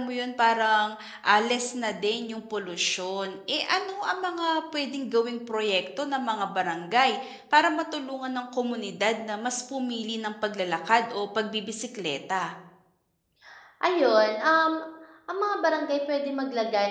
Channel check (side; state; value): both; identical; correlation 1.00